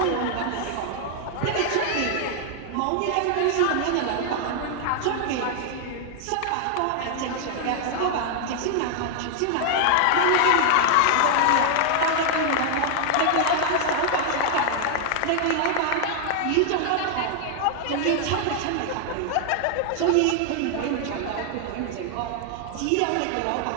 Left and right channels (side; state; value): both; different; correlation 0.00